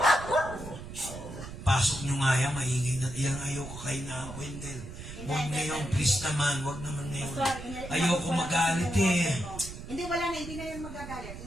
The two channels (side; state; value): right; noise; rumble, 11 dB below the sound